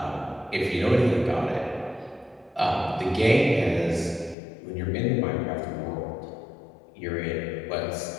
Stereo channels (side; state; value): right; drops out; at 4.4 s